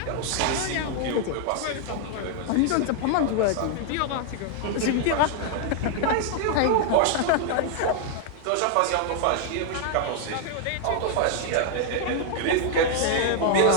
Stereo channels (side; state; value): both; different; correlation 0.00